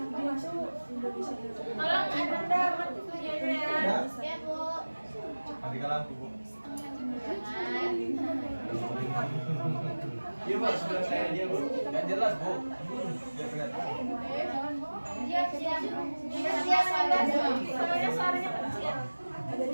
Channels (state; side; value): inverted; both; correlation -1.00